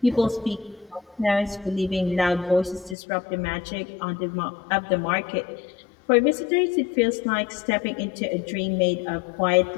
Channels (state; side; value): drops out; right; at 3.0 s